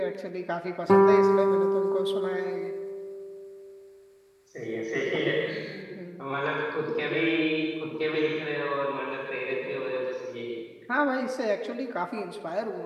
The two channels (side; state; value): both; identical; correlation 1.00